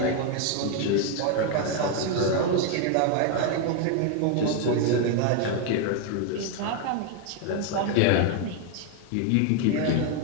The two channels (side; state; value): both; different; correlation 0.01